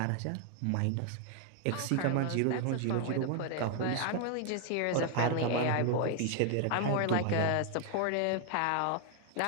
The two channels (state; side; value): different; both; correlation 0.00